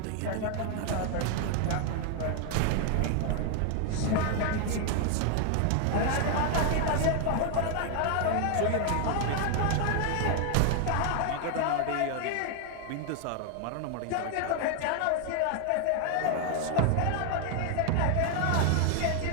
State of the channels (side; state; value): both; different; correlation 0.00